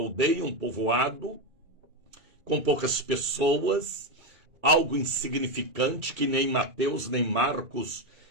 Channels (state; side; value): late; left; 2.7 ms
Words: um povoado, com poucas pessoas, algo insignificante que nem Mateus, nem Marcos